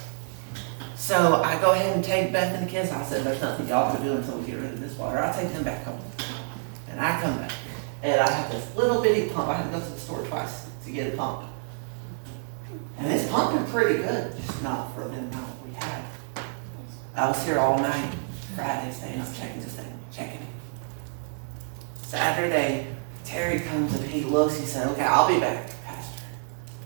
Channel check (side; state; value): left; silent; digital silence